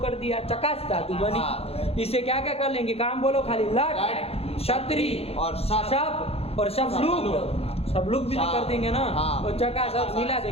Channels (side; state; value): right; late; 0.29 ms